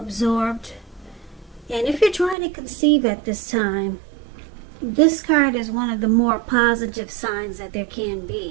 And if you're trying to conceive at this time, this card is one of the more positive signs that there can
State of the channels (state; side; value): drops out; left; at 2.4 s